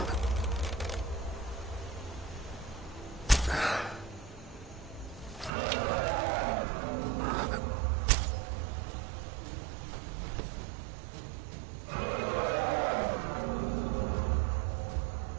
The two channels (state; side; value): drops out; left; at 5.5 s